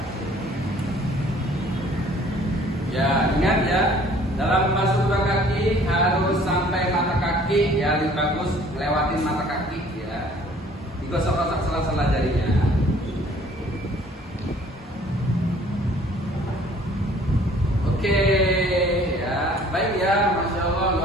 Ya, ingat ya, dalam membasuh kedua kaki harus sampai mata kaki ya, lebih bagus lewatin mata kaki ya. Digosok-gosok sela-sela jarinya. Oke, ya, baik ya, masya Allah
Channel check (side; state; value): both; normal; correlation 0.55